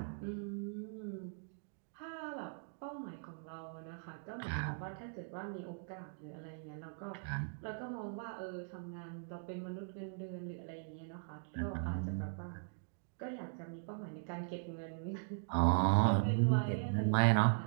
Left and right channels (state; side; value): silent; left; digital silence